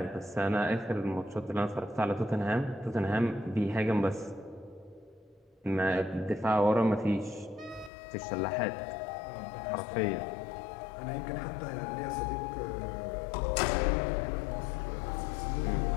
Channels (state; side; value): drops out; right; at 7.9 s